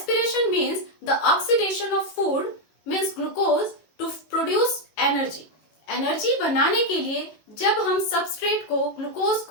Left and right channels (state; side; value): late; right; 18 ms